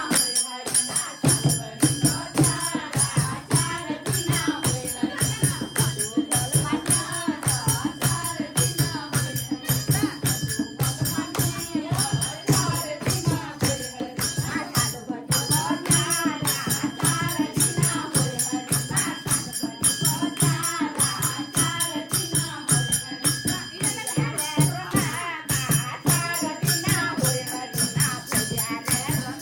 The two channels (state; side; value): identical; both; correlation 1.00